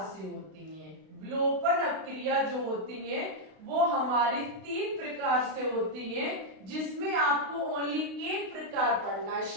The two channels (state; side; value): late; left; 32 ms